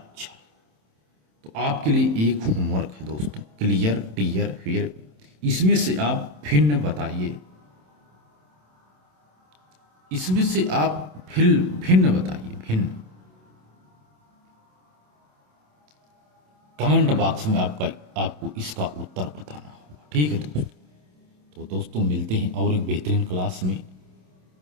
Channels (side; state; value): left; late; 27 ms